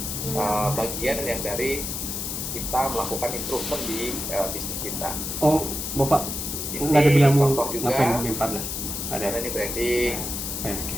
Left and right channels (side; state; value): left; noise; hiss, 4 dB below the sound